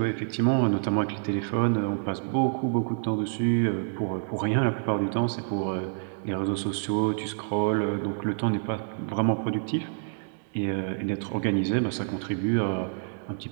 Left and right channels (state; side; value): silent; left; digital silence